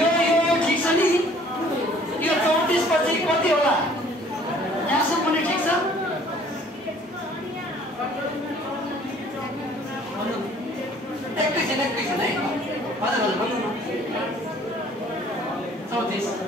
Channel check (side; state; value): both; normal; correlation 0.55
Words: छ नि यो 34 पछि कति होला यहाँसम्म पनि ठिक छ एकैछिन है हजुर हजुर भन्नु न